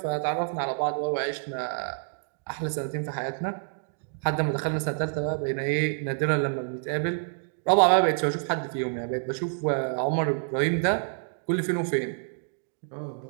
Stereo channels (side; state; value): left; silent; digital silence